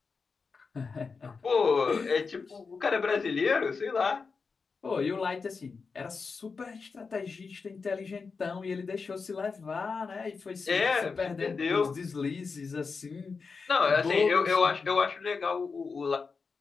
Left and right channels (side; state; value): right; quieter; 4.9 dB